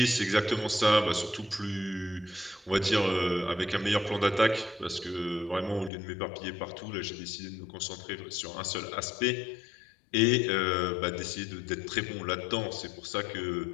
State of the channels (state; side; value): drops out; right; at 5.9 s